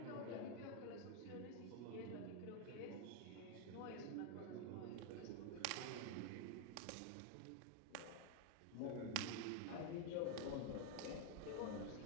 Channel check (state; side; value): different; both; correlation 0.00